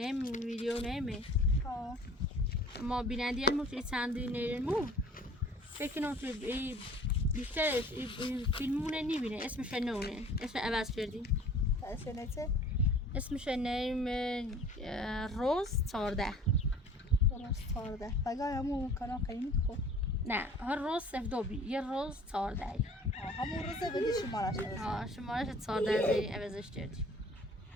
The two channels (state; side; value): normal; both; correlation 0.48